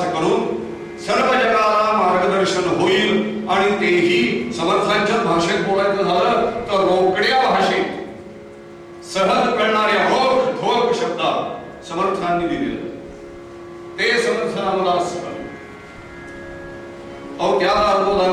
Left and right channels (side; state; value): both; identical; correlation 1.00